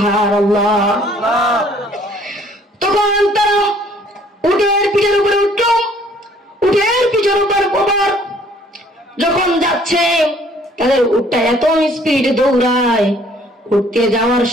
তখন তারা উটের পিঠের উপরে উঠল, উটের পিঠের উপর যখন যাচ্ছে তাদের উটটা এত স্পিডে দৌড়ায়, উঠতে যাওয়ার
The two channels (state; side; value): normal; both; correlation 0.59